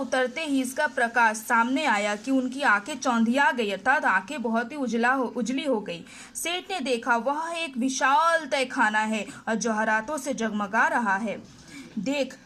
ही इसका प्रकाश सामने आया कि उनकी आंखें चौंधिया गई अर्थात आंखें बहुत ही उजली हो गई। सेठ ने देखा वह एक विशाल तहखाना है और जवाहरातों से जगमगा रहा है। देख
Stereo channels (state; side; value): identical; both; correlation 1.00